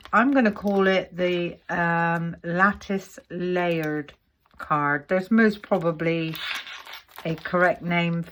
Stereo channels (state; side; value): identical; both; correlation 1.00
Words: I'm going to call it the lattice layered card. There's most probably a correct name